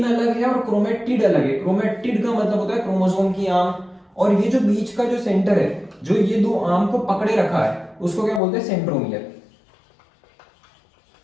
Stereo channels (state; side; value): drops out; right; at 8.4 s